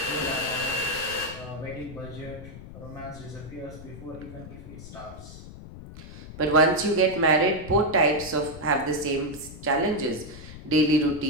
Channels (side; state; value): left; noise; rumble, 14 dB below the sound